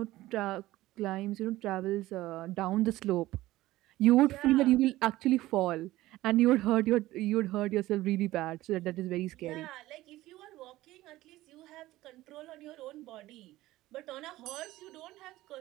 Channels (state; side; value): quieter; left; 16.8 dB